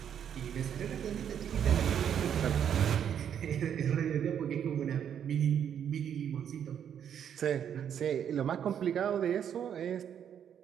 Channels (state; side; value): quieter; left; 8.9 dB